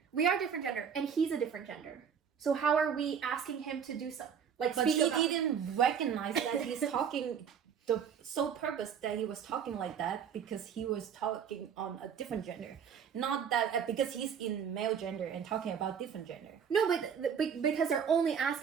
We are different gender, and he's a different gender. So how are we asking him to do something? Like, but he didn't recognize that he's talking... The sole purpose that he was talking like that because he was talking on a different gender, not that because he's in male gender and talking about different gender. No, but because they're only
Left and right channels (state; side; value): quieter; left; 7.5 dB